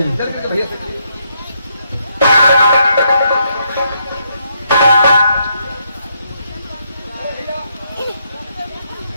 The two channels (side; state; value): both; inverted; correlation -0.76